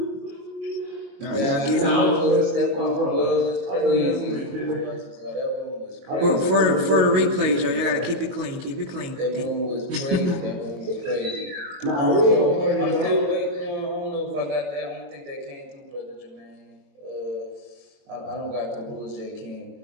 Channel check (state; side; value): late; left; 22 ms